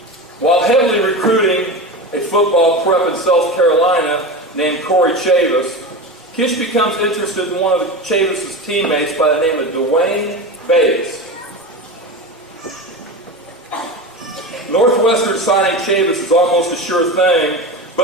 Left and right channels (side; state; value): both; normal; correlation 0.25